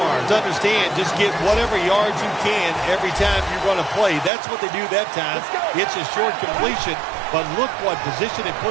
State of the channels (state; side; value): drops out; left; at 4.3 s